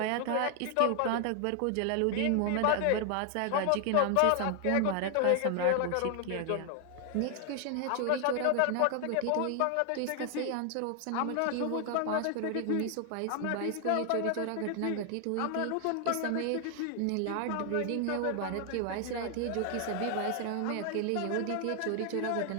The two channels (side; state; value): both; different; correlation 0.00